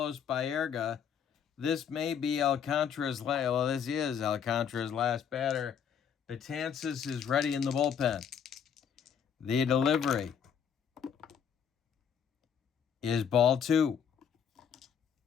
Baerga. This may be Alcantara's last. Well, this is Alcantara's last batter. Betances is ready in the bullpen. The delivery is ball 2.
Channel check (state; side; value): quieter; right; 7.7 dB